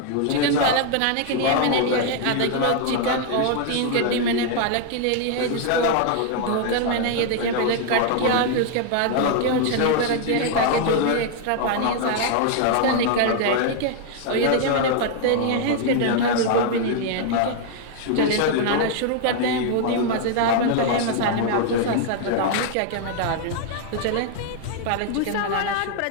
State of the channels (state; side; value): different; both; correlation 0.00